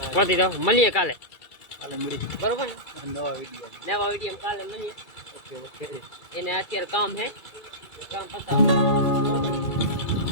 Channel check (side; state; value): right; late; 2.3 ms